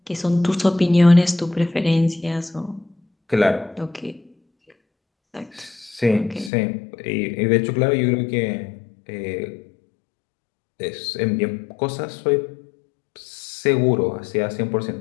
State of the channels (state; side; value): drops out; right; at 6.5 s